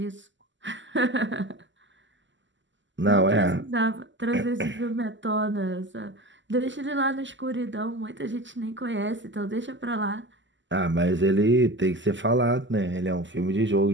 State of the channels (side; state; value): left; late; 0.54 ms